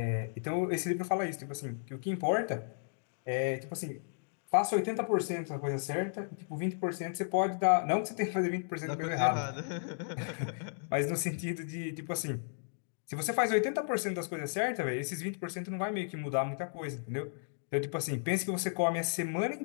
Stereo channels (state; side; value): silent; right; digital silence